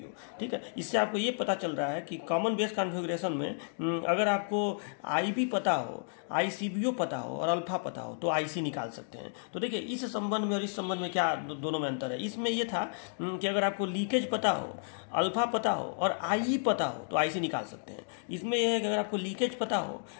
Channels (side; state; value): right; silent; digital silence